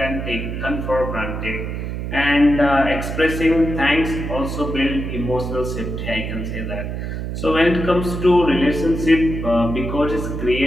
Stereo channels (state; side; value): noise; right; hum, 5 dB below the sound